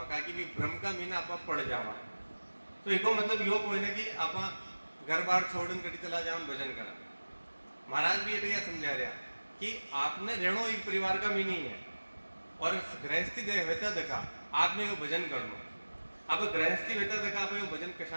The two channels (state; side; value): inverted; both; correlation -1.00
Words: का कि भ्रम का मीना आप पड़ जावा तो एको मतलब यो कोई ना कि आप घर बार छोड़न कड़ी चला जाओ भजन करा। महाराज भी ये समझा रहा कि आपने रेणो एक परिवार का मीनी है और गृहस्थी होता देखा आपने वो भजन करना। अब गृहस्थी होता देखा आप वो भजन